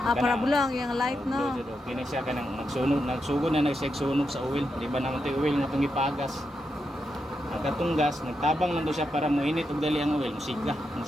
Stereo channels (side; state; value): both; normal; correlation 0.85